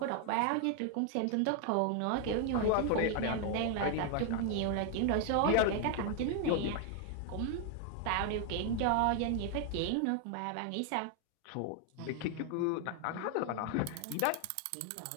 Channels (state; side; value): different; both; correlation 0.00